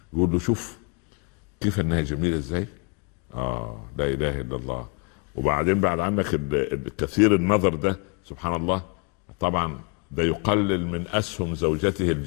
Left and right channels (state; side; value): quieter; right; 32.6 dB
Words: يقول له: شوف كيف أنها جميلة إزاي، لا إله إلا الله. وبعدين بعد عنك الكثير النظر ده، سبحان الله، طبعا ده يقلل من أسهم زوجته